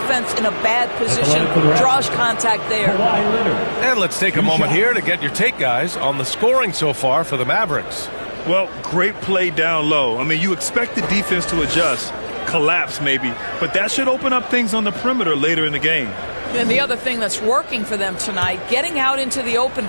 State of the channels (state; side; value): inverted; both; correlation -1.00